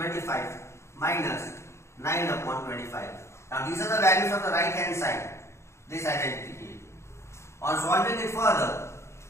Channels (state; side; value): late; right; 0.13 ms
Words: 25 minus 9 upon 25. Now these are the values of the right hand side, this identity. On solving it further,